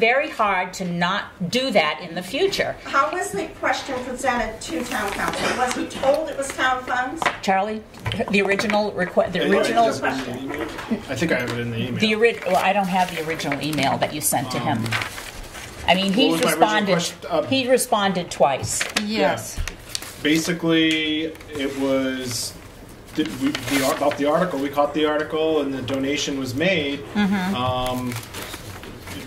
hard to not do that in the future. How was the question presented to town council? Was he told it was town funds? Charlie, the original request, the What was original, your question? I think I have it in the email. well, I don't have the original email that you sent to him. I mean, What he's was my original responded. question? He responded twice. Yes. Basically, it was about the article. We caught the article, and the donation was made.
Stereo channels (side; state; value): both; identical; correlation 1.00